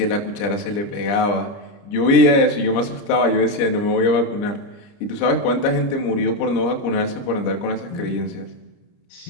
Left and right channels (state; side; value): late; right; 30 ms